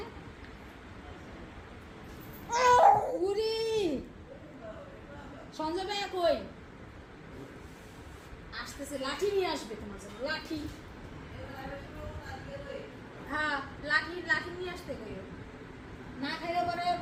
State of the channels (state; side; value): identical; both; correlation 1.00